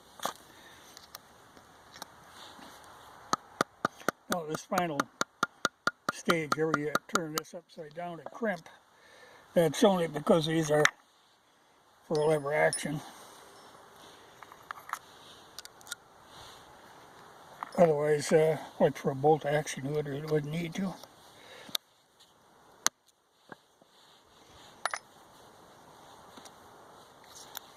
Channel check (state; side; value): identical; both; correlation 1.00